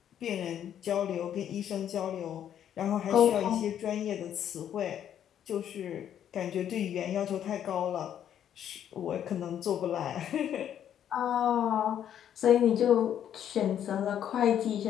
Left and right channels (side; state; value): right; quieter; 9.9 dB